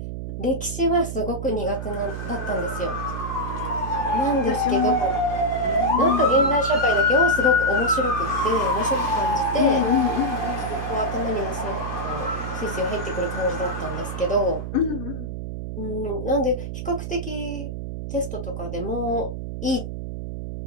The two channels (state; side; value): noise; right; hum, 6 dB below the sound